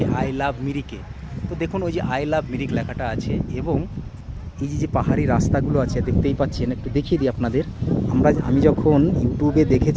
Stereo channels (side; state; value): both; identical; correlation 1.00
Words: আই লাভ মিরিকে। তো দেখুন, ওই যে আই লাভ মিরিক লেখাটা আছে এবং এই যে পাহাড়ি রাস্তাগুলো আছে দেখতেই পাচ্ছেন। একটু দেখিয়ে দিই আপনাদের। আমি যখন ইউটিউবে